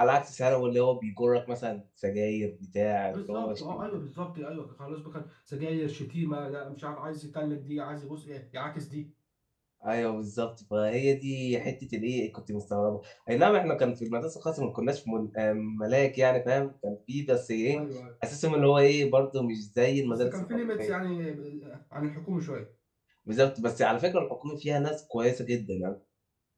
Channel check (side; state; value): both; identical; correlation 1.00